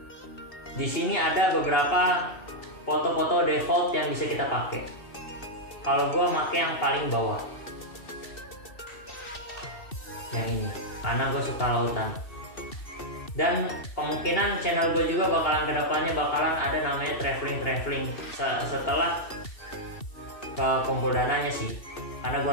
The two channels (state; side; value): late; right; 2.7 ms